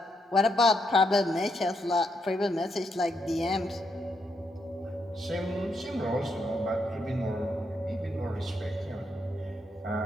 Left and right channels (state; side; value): normal; both; correlation 0.79